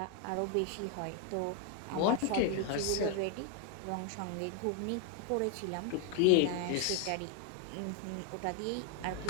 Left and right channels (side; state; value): both; different; correlation 0.01